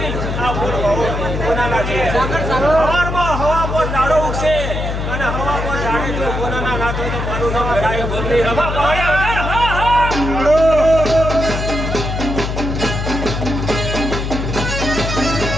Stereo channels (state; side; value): noise; left; hum, 3 dB below the sound